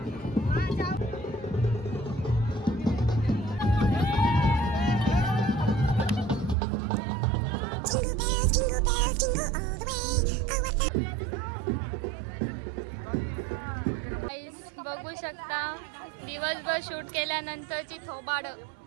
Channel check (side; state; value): left; drops out; at 6.6 s